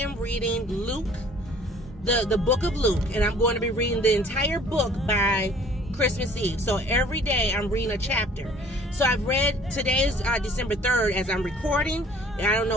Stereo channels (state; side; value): normal; both; correlation 0.53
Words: reading Luke, the book of Luke, and I'm going to be reading the entire book by Christmas Eve. So every day I'm reading a chapter. So I've read, today is December 3rd as I'm recording, and I don't know